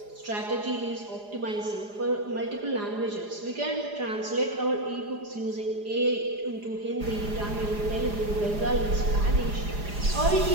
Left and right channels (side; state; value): left; late; 4.9 ms